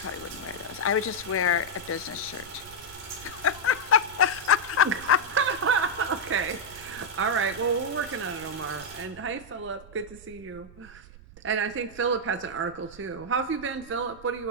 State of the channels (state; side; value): noise; right; rumble, 20 dB below the sound